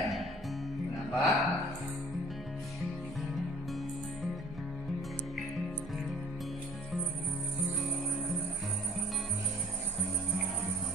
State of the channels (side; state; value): both; normal; correlation 0.48